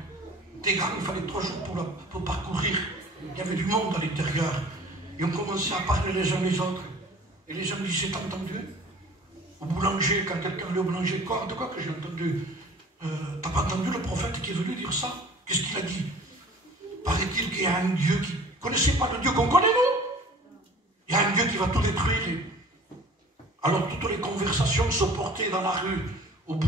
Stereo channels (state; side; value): normal; both; correlation 0.47